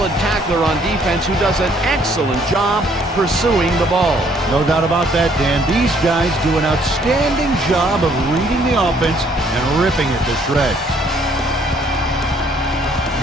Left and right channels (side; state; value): both; normal; correlation 0.64